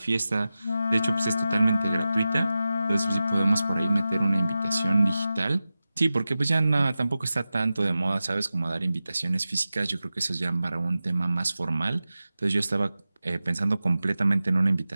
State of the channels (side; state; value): both; inverted; correlation -0.94